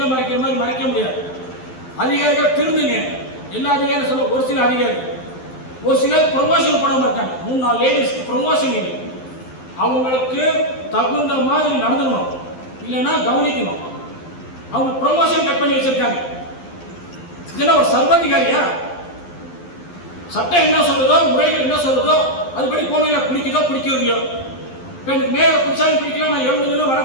மறைக்கிற மாதிரி மறைக்க முடியாது. அதிகாரிகள் திருந்துங்க. எல்லா அதிகாரியும் சொல்ல, ஒரு சில அதிகாரி, ஒரு சிலர் ப்ரொமோஷன் பண்ணாமல் இருக்காங்க. 3-4 லேடிஸ்க்கு ப்ரொமோஷன் இல்லை. அவங்களுக்கு தகுந்த மாதிரி நடந்துக்கணும், இல்லைன்னா கவனிக்கணும். அவங்க ப்ரொமோஷன் கட் பண்ணி வச்சிருக்காங்க. இதெல்லாம் ஒரு சர்வாதிகாரியா? சட்டம் என்ன சொல்றதோ, முறைகள் என்ன சொல்றதோ அதுபடி போனையில பிடிக்குதோ பிடிக்கிறதையோ. இப்போ எனக்கு மேயரை பிடிச்சாலும் பிடிக்கல, நான் 70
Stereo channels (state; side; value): late; right; 12 ms